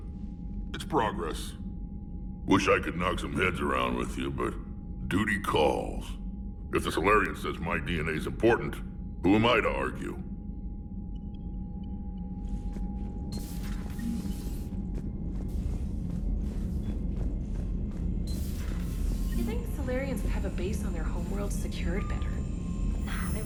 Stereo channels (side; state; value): both; identical; correlation 1.00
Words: it's progress. Wish I could knock some heads around with you, but duty calls. If the Solarian says my DNA's important, Who am I to argue? You think Solarians would have a base on their homeworld secured better? Nah, they